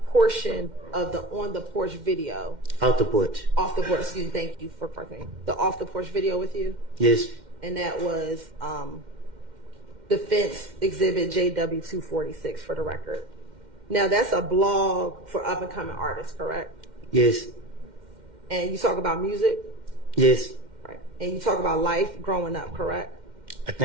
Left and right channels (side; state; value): left; late; 2.1 ms